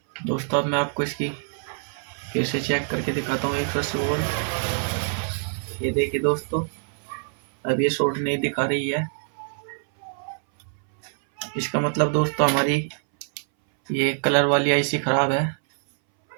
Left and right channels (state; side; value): silent; left; 62 dB below the other